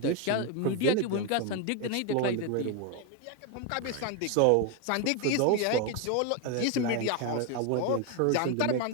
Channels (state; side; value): different; both; correlation 0.02